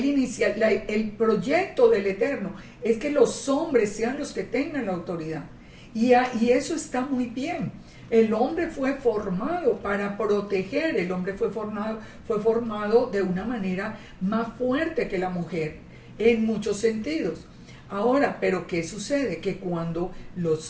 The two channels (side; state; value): both; identical; correlation 1.00